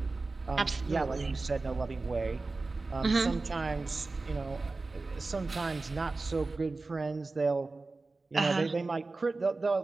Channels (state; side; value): quieter; left; 3.5 dB